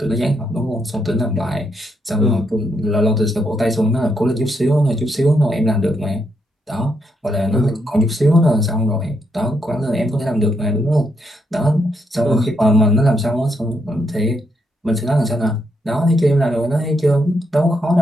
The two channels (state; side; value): normal; both; correlation 0.79